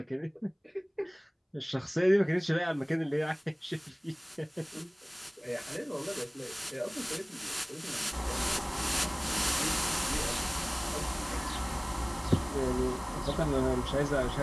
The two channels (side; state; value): both; identical; correlation 1.00